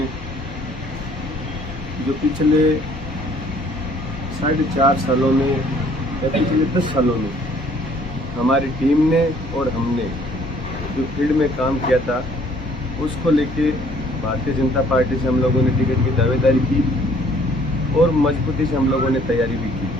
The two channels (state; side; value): normal; both; correlation 0.59